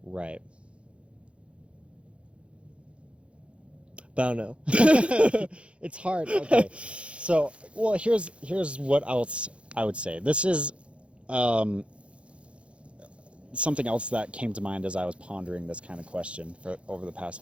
Right. But I don't know. It's hard. Okay. So, well, here's what else I would say. This is something else that came to mind as I was pondering this kind of question for over the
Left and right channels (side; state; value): left; late; 0.060 ms